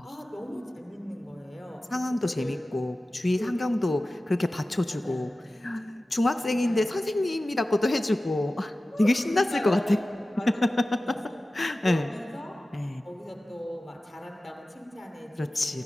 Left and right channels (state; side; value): normal; both; correlation 0.96